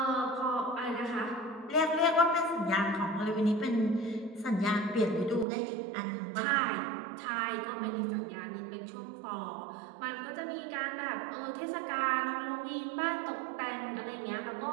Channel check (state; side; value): drops out; left; at 5.5 s